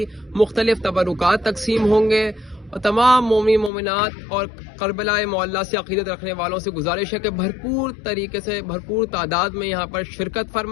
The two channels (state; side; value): drops out; right; at 3.7 s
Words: मुख्तलिफ तबरुकात तकसीम होंगे और तमाम मोमिन मोमिनात और करबला मोहल्ला से अक़ीदत रखने वालों से गुजारिश है कि भरपूर तरीके से भरपूर तादाद में यहाँ पर शिरकत